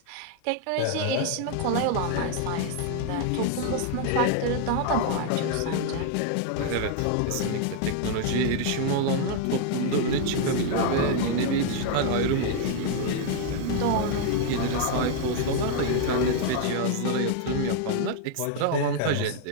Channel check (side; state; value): both; different; correlation 0.00